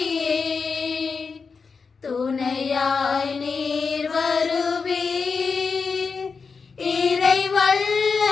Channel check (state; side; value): quieter; right; 5.1 dB